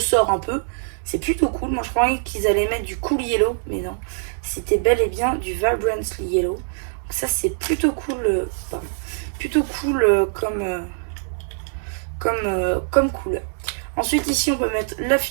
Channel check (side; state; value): left; silent; 64 dB below the other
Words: un peu, c'est plutôt cool. Moi je croyais qu'ils allaient mettre du Cool Yellow, mais non, c'était bel et bien du Vibrant Yellow. Donc ça c'est plutôt cool, comme couleur. Ensuite ici on peut mettre la